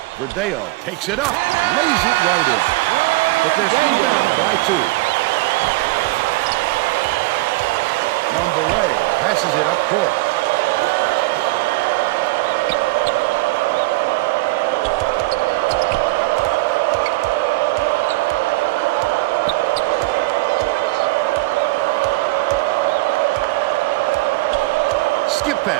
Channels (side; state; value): left; quieter; 21.3 dB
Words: Verdeo takes it up, lays it right in. But they're still down by 2. Mondelez passes it up court. Skip